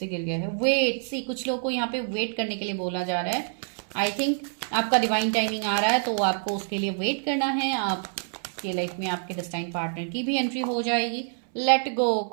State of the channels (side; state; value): left; silent; 60 dB below the other